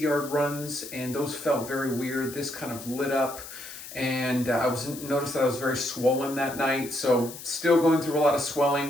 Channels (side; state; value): left; noise; hiss, 13 dB below the sound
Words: runs, and those felt very weird. This kind of lit up, and noticed that I was very swollen that night, so still going through a lot of